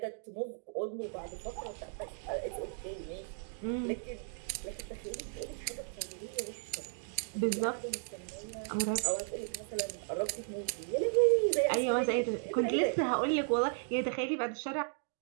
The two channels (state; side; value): silent; left; 54 dB below the other